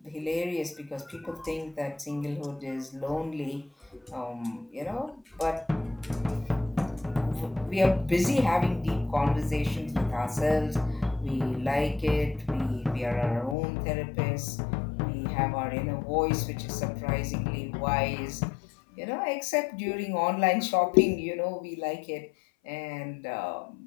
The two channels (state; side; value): drops out; right; at 13.6 s